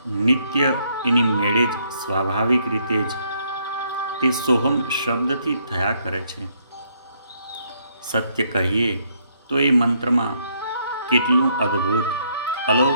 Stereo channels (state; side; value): inverted; both; correlation -0.71